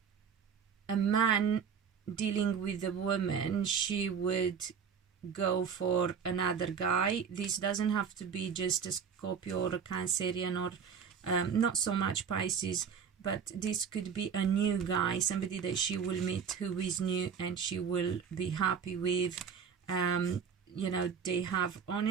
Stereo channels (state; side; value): quieter; left; 6.9 dB